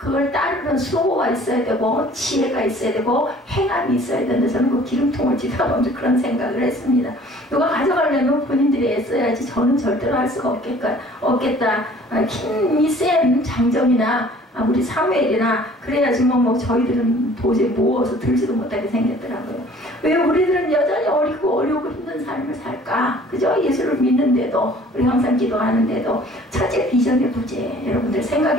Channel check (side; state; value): both; normal; correlation 0.52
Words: 따르는 수고가 있어야 되고 지혜가 있어야 되고 행함이 있어야 되는데 저는 그 기름통을 지나보면서 그런 생각을 했습니다. 누가 가져가려면 본인들이 애써야지 저는 절대로 할 수가 없겠다. 힘이 센 장정이나 우리 사무엘이나 그래야지 뭐 저희들은 도저히 모어서 들지도 못하게 생겼더라고요. 왜 우리들은 여전히 어리고 어려우고 힘든 삶을 살까? 그죠? 예수를 믿는데도 우리 항상 기도하는데도 첫째 비전의 부재 여러분들